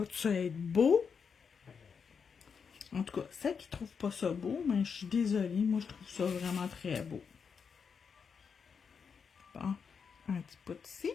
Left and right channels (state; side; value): quieter; right; 6.2 dB